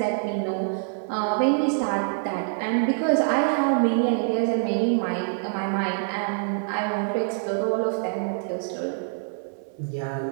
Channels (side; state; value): left; silent; digital silence